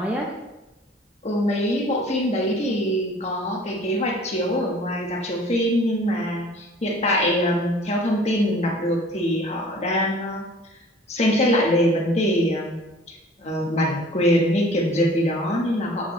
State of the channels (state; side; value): normal; both; correlation 0.49